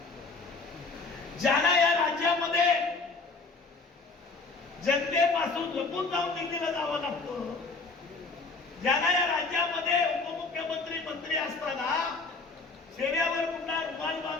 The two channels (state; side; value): quieter; right; 3.8 dB